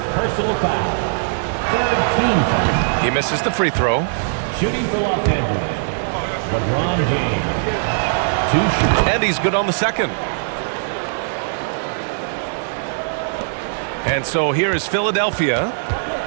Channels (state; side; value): silent; left; digital silence